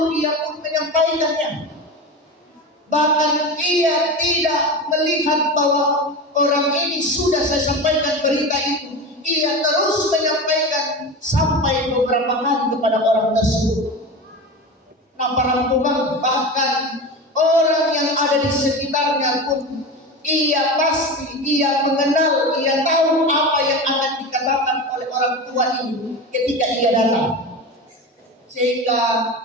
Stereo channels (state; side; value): normal; both; correlation 0.26